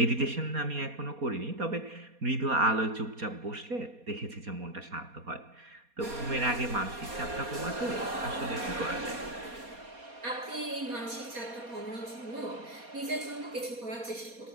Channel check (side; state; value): left; late; 4.2 ms